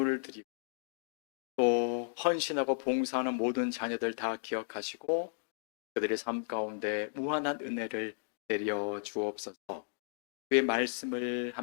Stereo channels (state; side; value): silent; right; digital silence